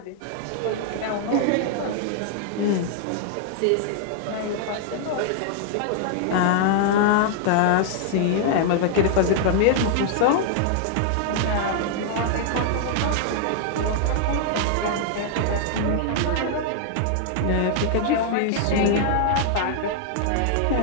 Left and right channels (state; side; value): different; both; correlation -0.01